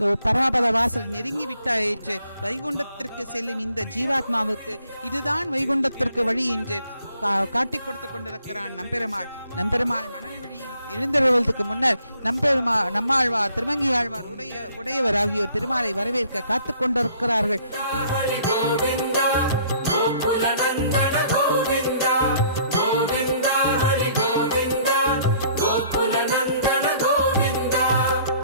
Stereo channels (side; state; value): both; inverted; correlation -0.59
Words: பரமபத வாசல் நெருங்கி விட்டாயிற்று. வைகுண்டத்திற்கு செல்லும் இந்த ஜீவாத்மாவுக்கு இதுதான் வைகுண்டத்திற்கு வழி என்று காட்டிக் கொடுத்துக் கொண்டிருக்கிறான் நம்பெருமாள். நம்பெருமாள் மணல் வழியில் எழுந்தருள்வதற்கு முன்னர் நம்மாழ்வார் திருமங்கி ஆழ்வார் உடையவர் ஆகியோர் திருமாலை வரவேற்க காத்துக் கொண்டிருக்கிறார்கள்.